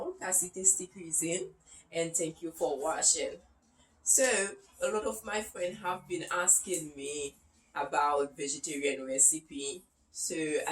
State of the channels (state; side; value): identical; both; correlation 1.00